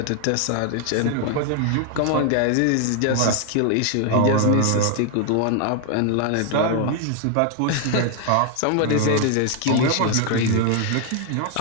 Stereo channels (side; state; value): both; different; correlation 0.00